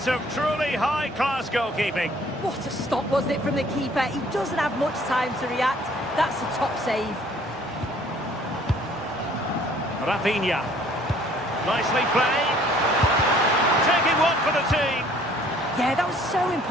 of truly high-class goalkeeping. What a stop, wasn't it, from the keeper? He doesn't have much time to react. That's a top save. Rafinha. Nicely played. Taking one for the team. Yeah, that was so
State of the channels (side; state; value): both; normal; correlation 0.57